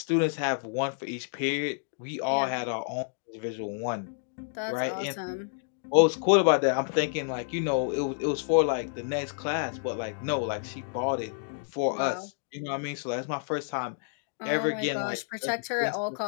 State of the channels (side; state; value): right; silent; digital silence